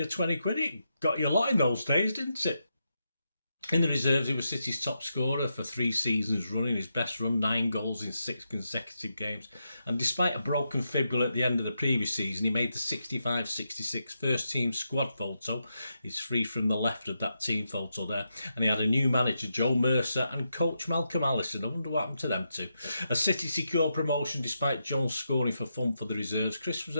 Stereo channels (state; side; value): inverted; both; correlation -0.84